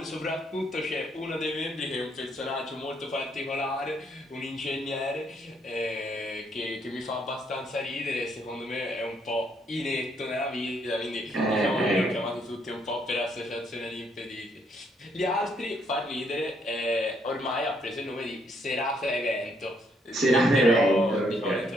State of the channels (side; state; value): both; normal; correlation 0.71